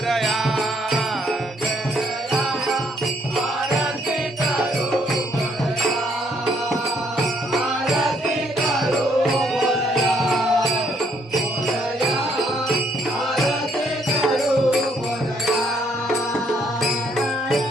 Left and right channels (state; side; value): normal; both; correlation 0.69